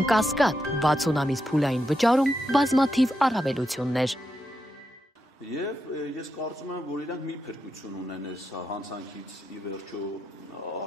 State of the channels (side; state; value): both; normal; correlation 0.84